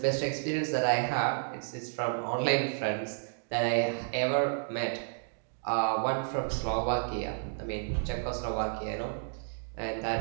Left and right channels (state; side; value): silent; left; digital silence